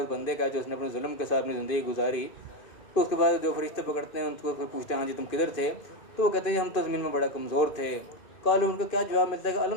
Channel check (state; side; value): late; right; 2.5 ms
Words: بندے کا جو اس نے اپنے ظلم کے ساتھ اپنی زندگی گزاری، تو اس کے بعد جو فرشتے پکڑتے ہیں ان کو پھر پوچھتے ہیں ہاں جی تم کدھر تھے، تو وہ کہتے ہیں ہم تو زمین میں بڑا کمزور تھے۔ قالوا، ان کا کیا جواب ملتا ہے کہ